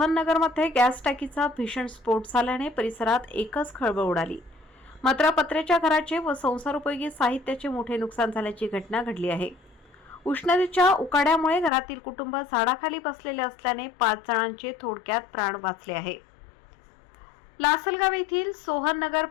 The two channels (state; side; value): drops out; right; at 11.7 s